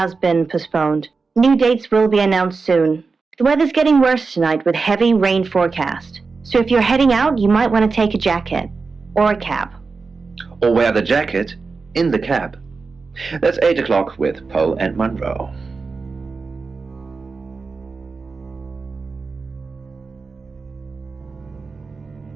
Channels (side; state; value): left; quieter; 4.4 dB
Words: been postponed. New dates will be announced soon. The weather's getting worse tonight with heavy rain forecast. So if you're heading out, you might want to take a jacket. Or a cab. Or wear the jacket in the cab. That's 8 o'clock with Poe and Monroe.